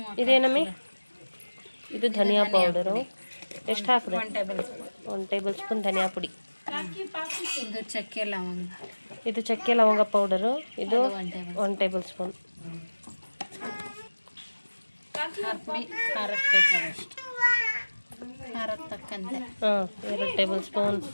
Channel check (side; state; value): both; inverted; correlation -1.00